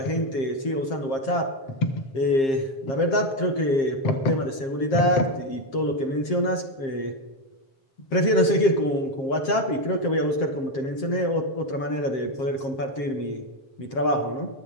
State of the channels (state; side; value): late; right; 7.5 ms